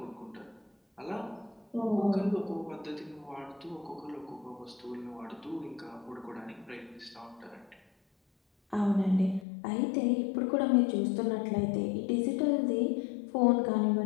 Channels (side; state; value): right; drops out; at 9.5 s